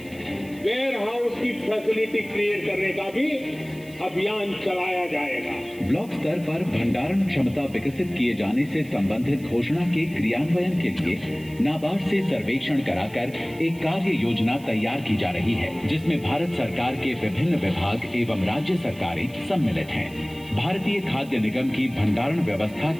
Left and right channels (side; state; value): right; noise; hiss, 23 dB below the sound